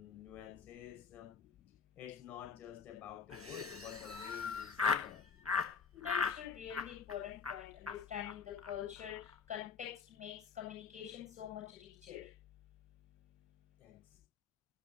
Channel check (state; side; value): quieter; right; 6.0 dB